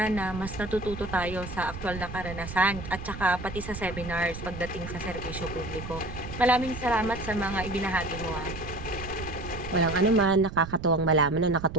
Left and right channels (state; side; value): noise; right; rumble, 10 dB below the sound